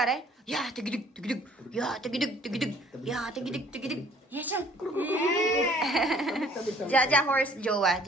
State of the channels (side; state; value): both; normal; correlation 0.57